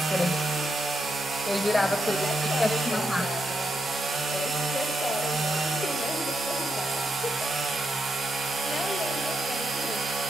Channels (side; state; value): both; normal; correlation 0.82